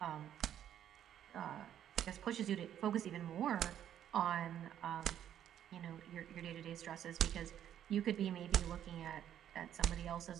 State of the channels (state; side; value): quieter; left; 10.4 dB